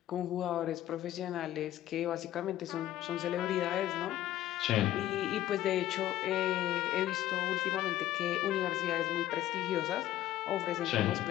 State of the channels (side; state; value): right; quieter; 13.6 dB